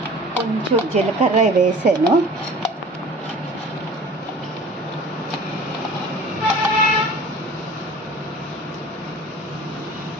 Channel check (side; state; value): both; normal; correlation 0.44